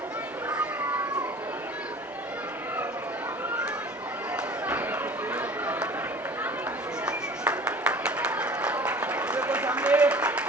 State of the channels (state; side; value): normal; both; correlation 0.45